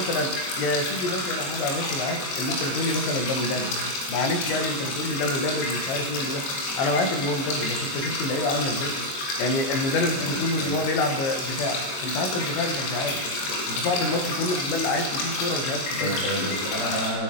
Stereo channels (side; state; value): right; late; 22 ms